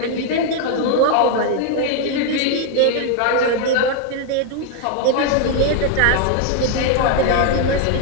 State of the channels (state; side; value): different; both; correlation 0.00